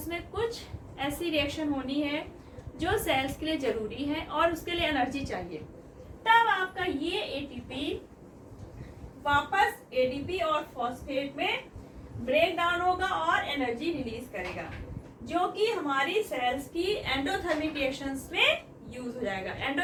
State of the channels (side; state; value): both; identical; correlation 1.00